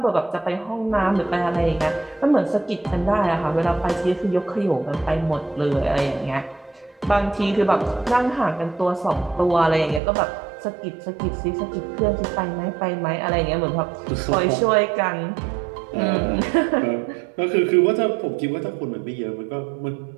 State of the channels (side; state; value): left; drops out; at 10.0 s